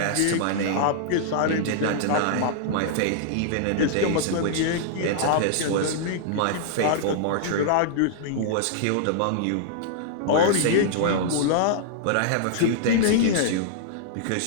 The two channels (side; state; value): both; different; correlation -0.01